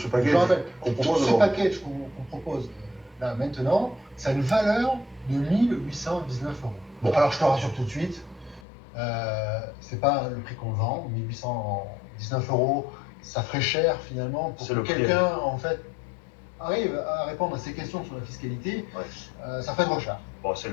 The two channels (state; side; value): drops out; right; at 8.6 s